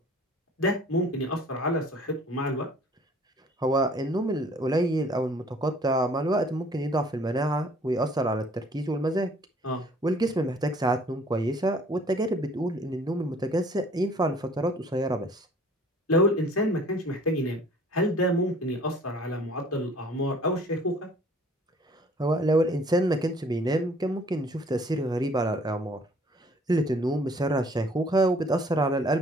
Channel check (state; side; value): normal; both; correlation 0.55